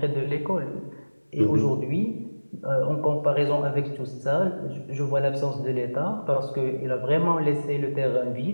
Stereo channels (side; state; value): both; inverted; correlation -1.00